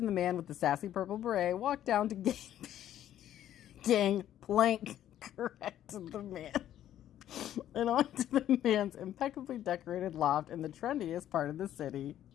the man with the sassy purple beret walked down to gangplank, corrected the man, and onto the man's impeccably decorated loft in the trendiest part of the city.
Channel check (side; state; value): right; quieter; 11.6 dB